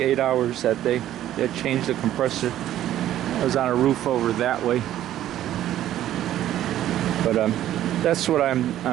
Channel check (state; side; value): quieter; left; 12.5 dB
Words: hours that day. They had changed the compressor. I was on a roof over that way. But that's what